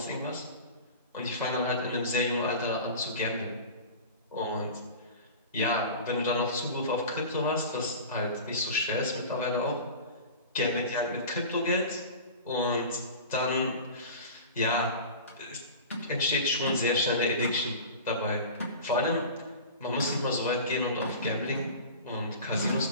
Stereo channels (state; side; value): inverted; both; correlation -0.34